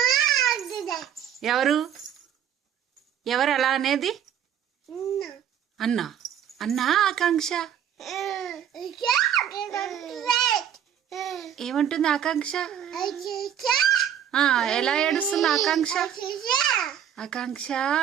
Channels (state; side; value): quieter; left; 9.4 dB